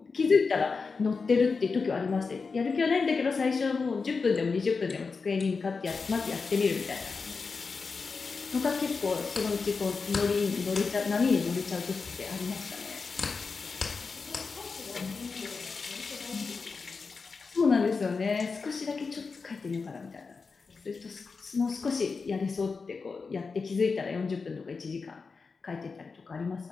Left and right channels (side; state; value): right; quieter; 4.7 dB